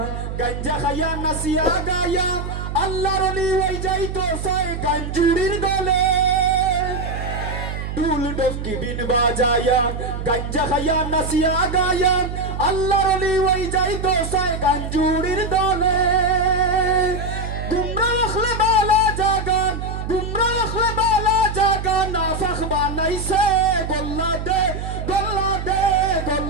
গঞ্জা খায়া নাসিয়া গায়া আল্লাহর ওলি ওই যাইতো সাই গঞ্জুরির দলে ডুল ডফকি বিন বাজায়া গঞ্জা খায়া নাসিয়া গায়া আল্লাহর ওলি ওই যাইতো সাই গঞ্জুরির দলে নাইছে গোল্লা দে গোল্লা দে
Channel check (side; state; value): right; noise; hum, 6 dB below the sound